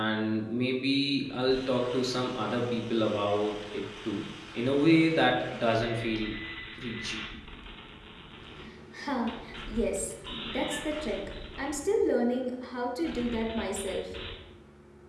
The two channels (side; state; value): both; identical; correlation 1.00